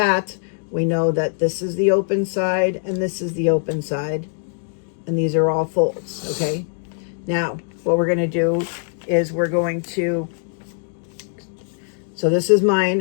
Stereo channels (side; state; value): right; silent; 60 dB below the other